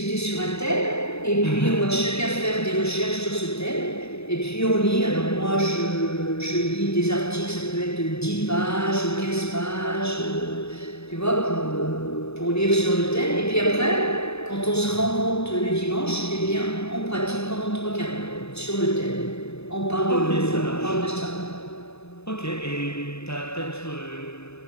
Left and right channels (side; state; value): right; late; 0.79 ms